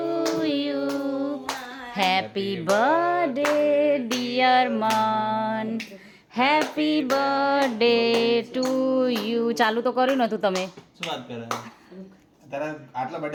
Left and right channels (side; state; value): both; identical; correlation 1.00